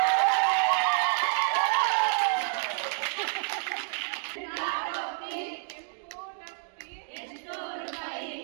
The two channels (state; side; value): silent; left; 59 dB below the other